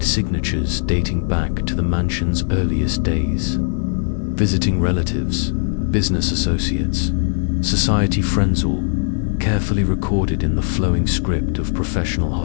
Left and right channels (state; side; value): silent; right; 61 dB below the other